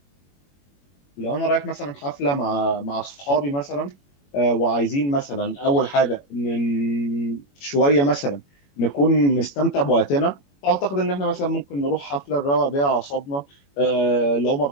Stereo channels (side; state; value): right; late; 21 ms